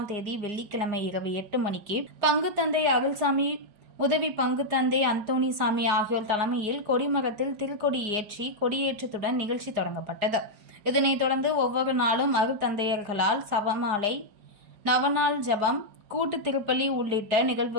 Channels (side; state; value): left; late; 4.8 ms